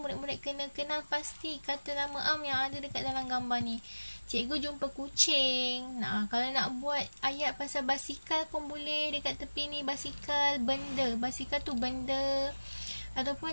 kena kenal pasti kata nama am yang ada dekat dalam gambar ni. Cikgu jumpa kucing. Nah, kalau nak buat ayat pasal basikal pun boleh dekat tepi ni. Basikal, benda. Basikal tu benda. Ataupun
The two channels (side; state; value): both; inverted; correlation -1.00